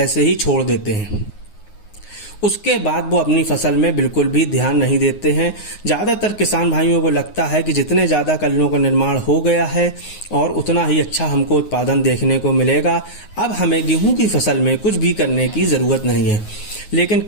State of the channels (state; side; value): late; right; 9.5 ms